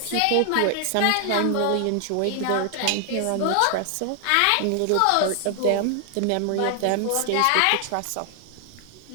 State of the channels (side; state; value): both; different; correlation 0.00